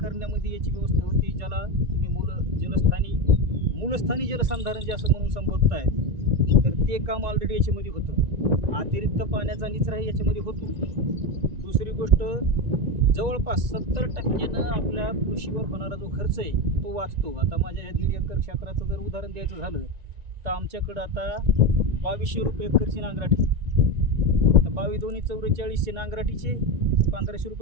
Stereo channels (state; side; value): late; left; 1.9 ms